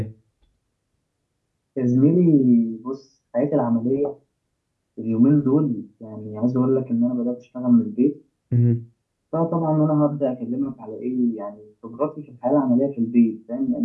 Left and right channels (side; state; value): both; identical; correlation 1.00